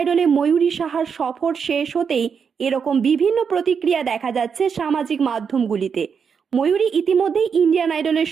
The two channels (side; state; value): left; quieter; 6.5 dB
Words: ময়ূরী সাহার সফর শেষ হতেই এরকম বিভিন্ন প্রতিক্রিয়া দেখা যাচ্ছে সামাজিক মাধ্যমগুলিতে। ময়ূরী ইতিমধ্যেই ইন্ডিয়ান আইডলের